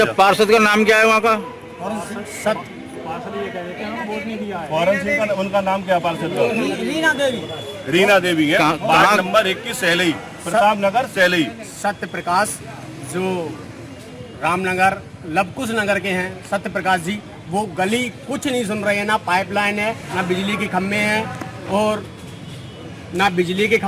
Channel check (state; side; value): identical; both; correlation 1.00